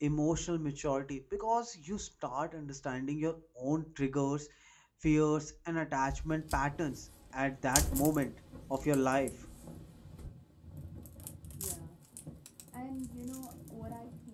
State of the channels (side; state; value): both; identical; correlation 1.00